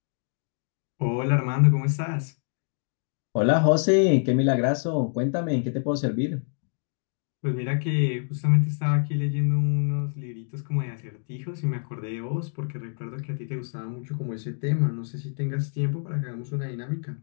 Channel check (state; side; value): silent; right; 61 dB below the other